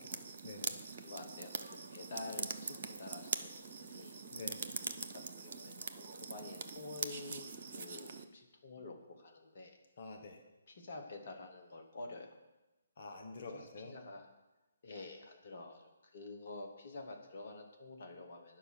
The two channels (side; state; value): both; inverted; correlation -0.72